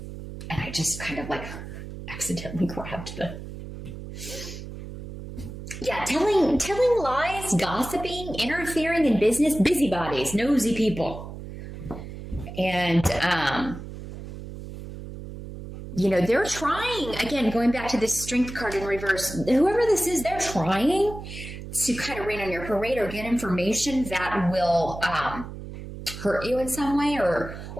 and I just kind of like accidentally grabbed the... Yeah, telling lies, gossiping, interfering in business, busybodies, nosy people. And, you know, they're trying, again, going back to this Strength card in reverse, whoever this is, they're trying to kind of rain on your parade or get information that will hurt you in some way, or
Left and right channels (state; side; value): noise; right; hum, 11 dB below the sound